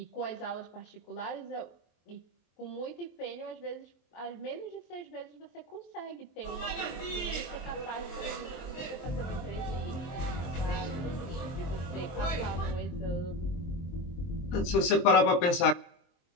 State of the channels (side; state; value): right; late; 23 ms